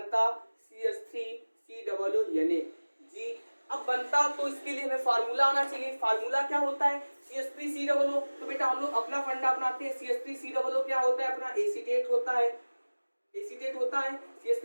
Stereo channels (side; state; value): both; inverted; correlation -1.00